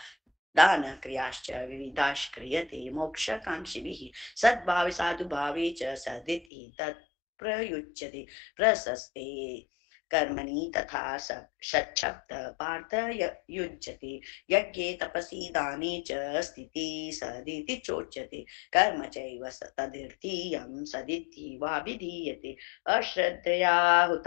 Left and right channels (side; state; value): right; drops out; at 6.5 s